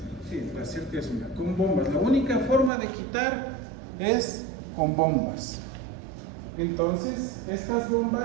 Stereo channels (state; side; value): drops out; left; at 2.7 s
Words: Sí, la cerca es una, con bombas. La única forma de quitar es con bombas. Entonces, estas